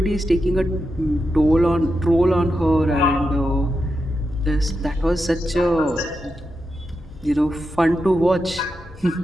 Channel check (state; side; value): normal; both; correlation 0.87